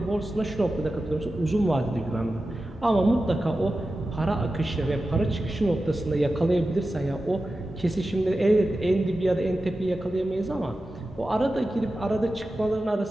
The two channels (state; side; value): normal; both; correlation 0.93